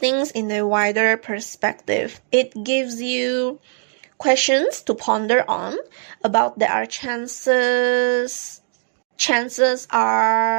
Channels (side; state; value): left; silent; digital silence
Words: in a wider perspective. It gives you questions to ponder on about there are chances